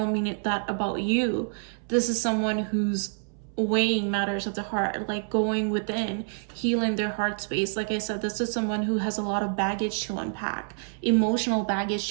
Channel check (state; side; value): silent; left; 60 dB below the other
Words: mean it that about you. This is someone who's weighing matters of the heart, like going within, healing their heart space. Like I said, this is someone who has a lot of baggage to unpack, emotional baggage